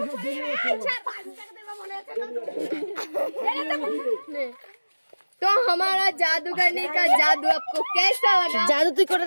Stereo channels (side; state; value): both; inverted; correlation -1.00